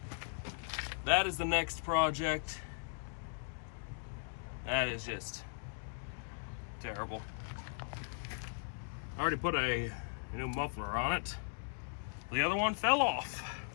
That is the next project. That is just terrible. I already put a new muffler on it. The other one fell off,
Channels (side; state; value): right; silent; digital silence